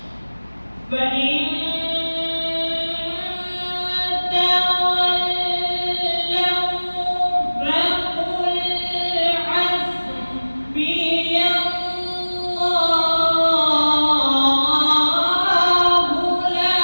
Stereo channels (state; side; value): inverted; both; correlation -1.00